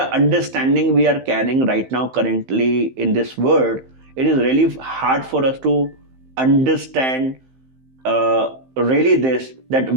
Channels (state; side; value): late; left; 15 ms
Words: understanding we are carrying right now, currently in this world, it is really hard for us to understand really this, that